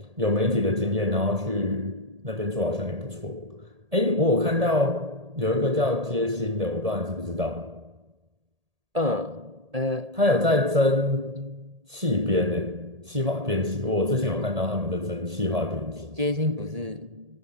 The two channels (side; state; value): left; late; 1.8 ms